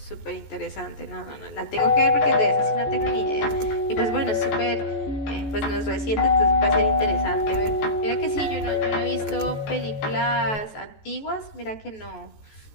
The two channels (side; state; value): right; late; 14 ms